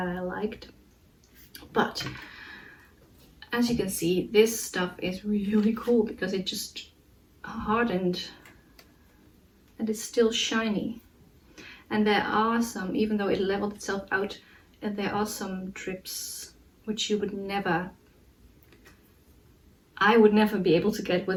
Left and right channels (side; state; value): both; identical; correlation 1.00